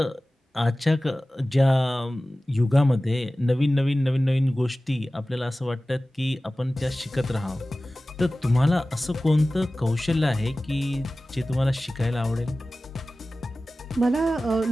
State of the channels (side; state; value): both; normal; correlation 0.96